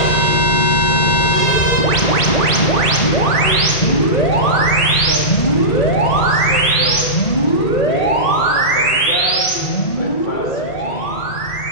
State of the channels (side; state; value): right; late; 1.8 ms